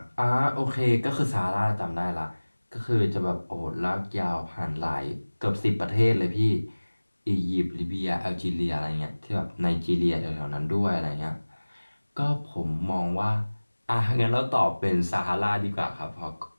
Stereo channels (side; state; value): both; inverted; correlation -1.00